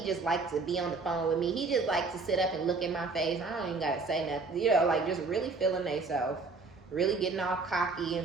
just likes to be on the phone with me. He just likes to sit up and look in my face. I don't even gotta say nothing. You know, like just really feeling themselves, really getting all cocky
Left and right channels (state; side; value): quieter; left; 4.0 dB